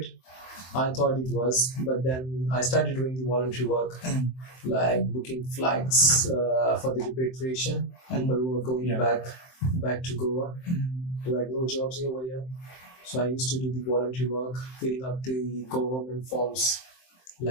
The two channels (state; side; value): late; right; 23 ms